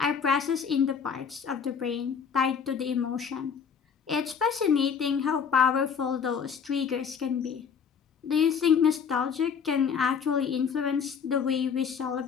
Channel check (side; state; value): right; quieter; 6.7 dB